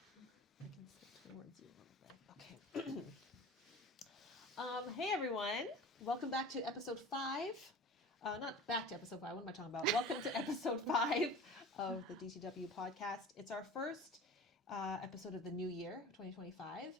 I can sit towards you a little bit. Okay. Hey everyone. Welcome back to episode 5. Not back to episode 5. What am I talking about? Welcome to episode 5 of the DTW podcast. It's our first episode of the new year, 2025.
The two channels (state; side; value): normal; both; correlation 0.38